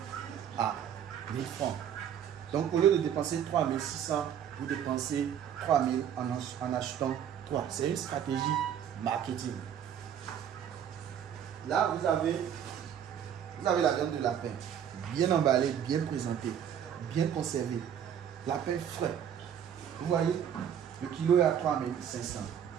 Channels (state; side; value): quieter; left; 9.1 dB